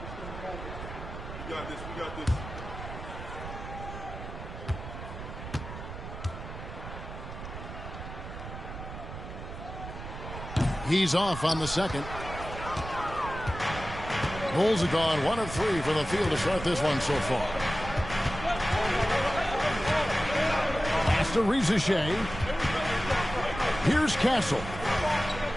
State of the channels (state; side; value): noise; right; rumble, 10 dB below the sound